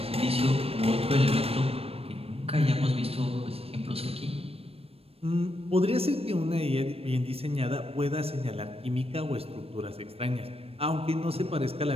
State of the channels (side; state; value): left; late; 0.28 ms